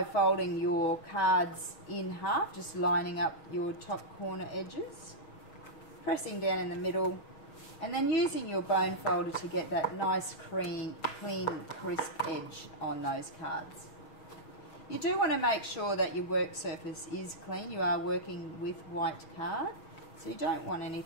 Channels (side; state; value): right; late; 6.4 ms